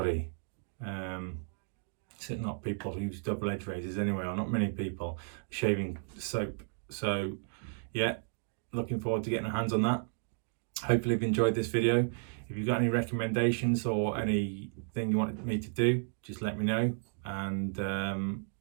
Certainly not people who use double edge razors anyway, or not many people. Shaving soap. So yeah, looking forward to getting our hands on that. Hopefully you've enjoyed this video. If you've got any recommendations or anything you want me to do, just let me know, and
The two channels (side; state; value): left; silent; digital silence